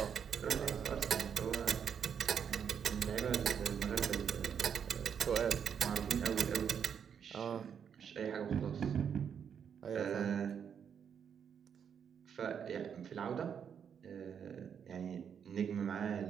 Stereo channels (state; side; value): quieter; left; 7.7 dB